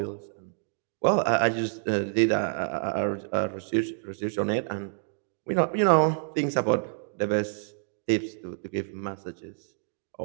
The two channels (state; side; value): silent; left; digital silence